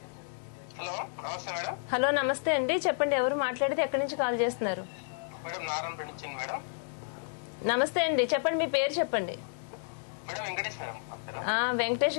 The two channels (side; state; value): right; silent; digital silence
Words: హలో, నమస్తే మేడం. హలో నమస్తే అండి, చెప్పండి ఎవరు మాట్లాడితే ఎక్కడి నుంచి కాల్ చేస్తున్నారు? మేడం నారాయణపేట నుంచి మేడం. నమస్తే అండి, చెప్పండి మీ పేరు చెప్పండి. Madam Venkatesh madam. వెంకటేష్